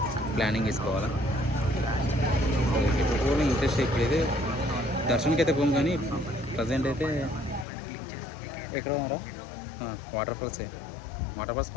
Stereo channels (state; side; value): drops out; right; at 7.7 s